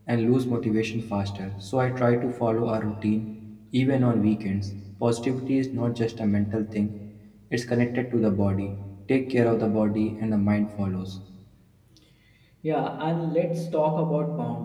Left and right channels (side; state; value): both; identical; correlation 1.00